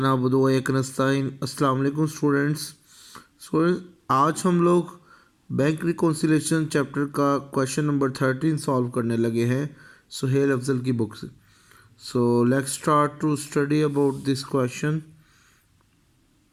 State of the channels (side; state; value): both; identical; correlation 1.00